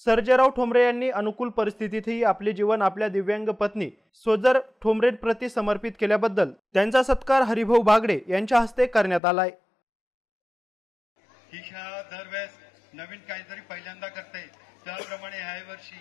सर्जेराव ठोंबरे यांनी अनुकूल परिस्थितीतही आपले जीवन आपल्या दिव्यांग पत्नी सोजर ठोंबरेंप्रती समर्पित केल्याबद्दल त्यांचा सत्कार हरिभाऊ बागडे यांच्या हस्ते करण्यात आलाय। ही शाळा दरवेळेस नवीन काहीतरी पहिल्यांदा करते, त्याप्रमाणे याही वर्षी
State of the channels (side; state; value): right; drops out; at 9.2 s